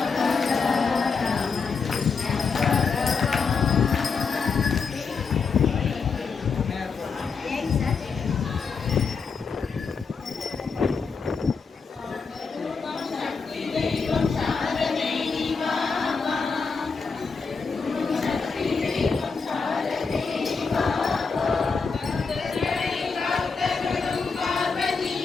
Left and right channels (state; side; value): quieter; right; 5.1 dB